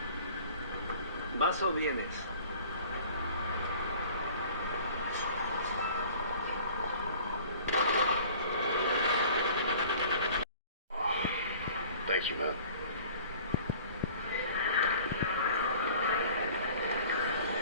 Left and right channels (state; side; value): inverted; both; correlation -0.48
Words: ¿vas o vienes? Thank you, man.